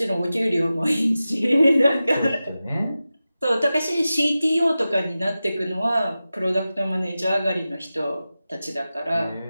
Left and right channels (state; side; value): inverted; both; correlation -0.94